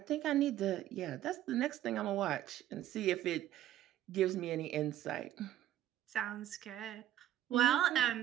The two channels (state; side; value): quieter; left; 12.6 dB